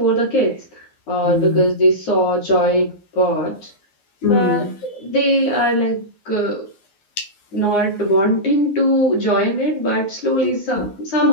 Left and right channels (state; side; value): late; right; 10 ms